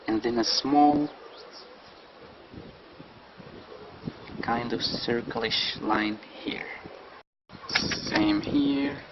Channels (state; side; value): identical; both; correlation 1.00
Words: and then a small kind of circle-ish line here. Same here.